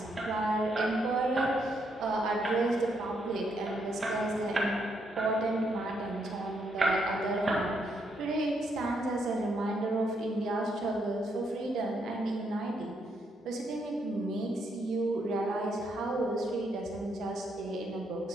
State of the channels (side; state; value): both; normal; correlation 0.76